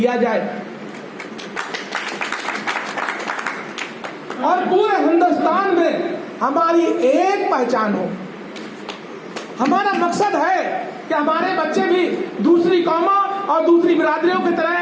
जाए और पूरे हिंदुस्तान में हमारी एक पहचान हो। हमारा मकसद है कि हमारे बच्चे भी दूसरी कौमों और दूसरी बिरादरियों की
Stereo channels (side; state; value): both; identical; correlation 1.00